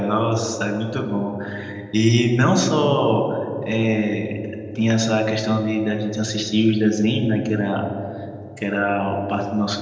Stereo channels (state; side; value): identical; both; correlation 1.00